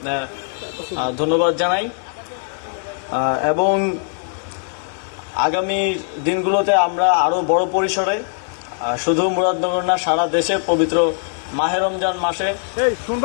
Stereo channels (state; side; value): silent; right; digital silence